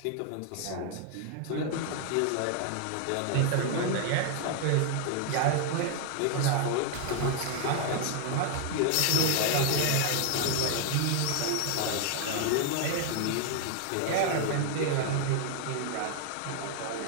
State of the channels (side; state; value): both; different; correlation 0.00